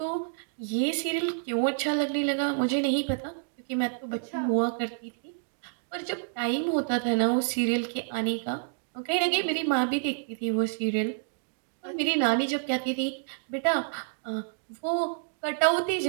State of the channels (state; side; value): silent; left; digital silence